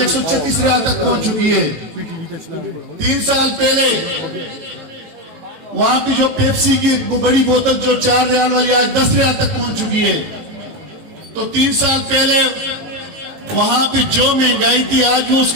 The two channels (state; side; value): late; left; 18 ms